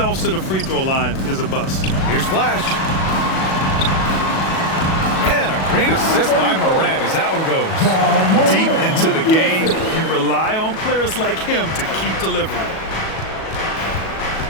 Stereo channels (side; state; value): right; late; 37 ms